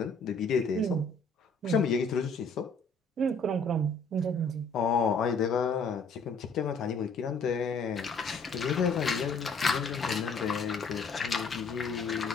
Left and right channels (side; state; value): right; quieter; 3.5 dB